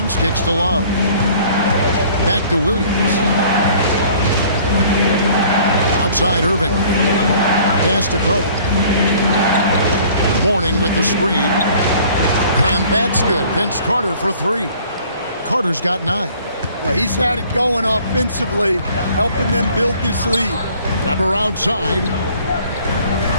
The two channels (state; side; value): inverted; both; correlation -0.53